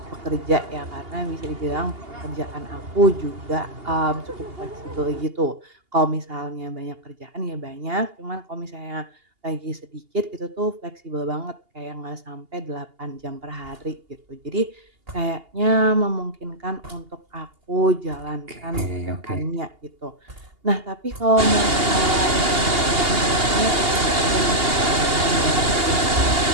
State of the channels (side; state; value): left; late; 2.8 ms